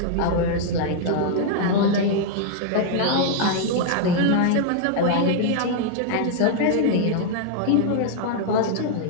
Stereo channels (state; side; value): different; both; correlation -0.01